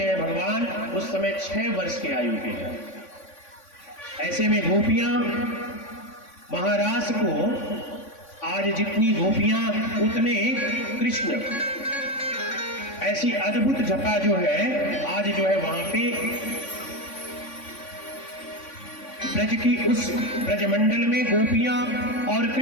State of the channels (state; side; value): late; right; 3.5 ms